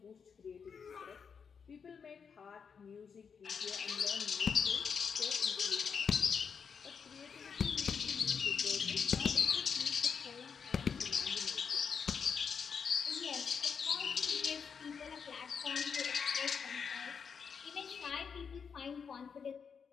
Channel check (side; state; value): right; quieter; 6.3 dB